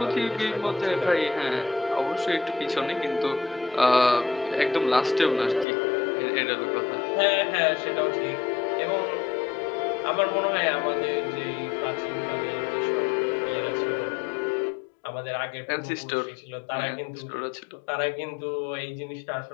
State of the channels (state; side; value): drops out; right; at 5.7 s